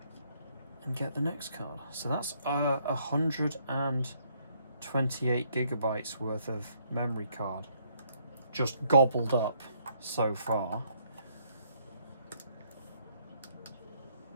and get the next card. So that's 128 gigabytes worth of memory card just gobbled up so far.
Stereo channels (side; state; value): both; inverted; correlation -0.68